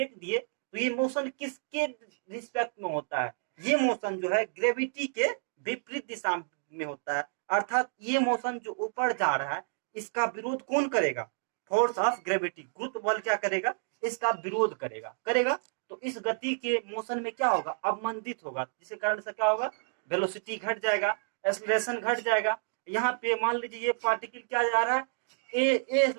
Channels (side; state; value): left; silent; digital silence